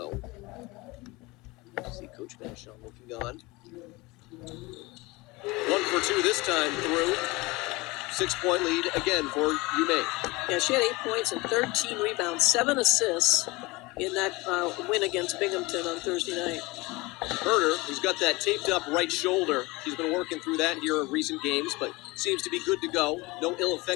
See Coach Vashon looking on. 1 for 2 this time through. 6-point lead again for UMaine. Yeah, she had 8 points and 13 rebounds, 7 assists in that win against Binghamton on Thursday night. Herder, who's got that taped up right shoulder, she's been working through that here in recent games, but seems to be good to go. No ill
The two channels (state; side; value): quieter; right; 23.2 dB